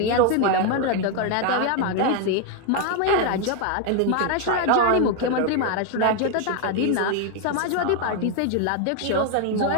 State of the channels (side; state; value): both; different; correlation 0.01